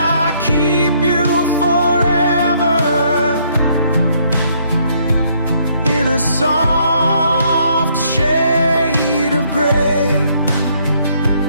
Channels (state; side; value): inverted; both; correlation -0.68